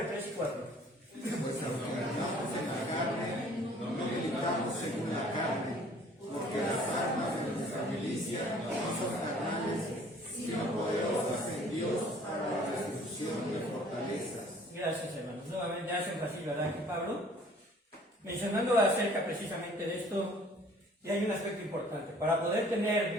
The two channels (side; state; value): both; normal; correlation 0.54